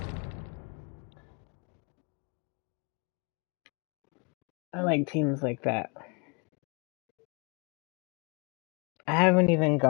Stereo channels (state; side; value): quieter; right; 33.7 dB